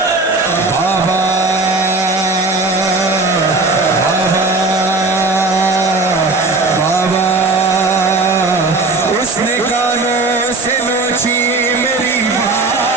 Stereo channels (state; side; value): quieter; left; 3.5 dB